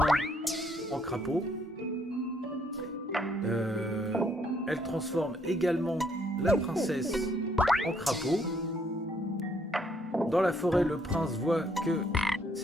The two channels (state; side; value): normal; both; correlation 0.68